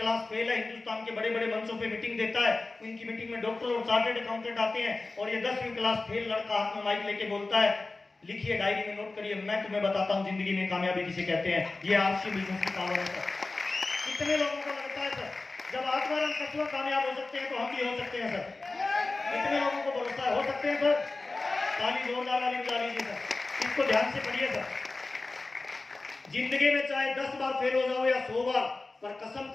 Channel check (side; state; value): right; quieter; 3.4 dB